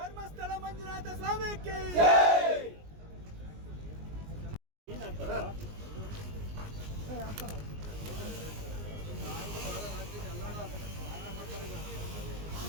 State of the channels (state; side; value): late; left; 19 ms